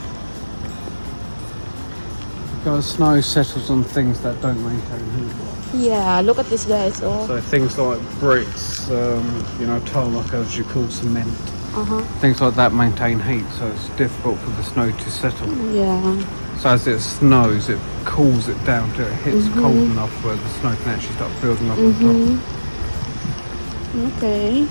Because snow settles on things that don't maintain heat. Yeah, look at this, guys. Oh. So things like bricks, tarmac, as you call cement, things like that maintain heat, so it's difficult for the snow to settle. Yeah. So as it snows, it cools it down till it hits cold enough where the snow can actually start building up on top. Okay.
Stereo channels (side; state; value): both; inverted; correlation -1.00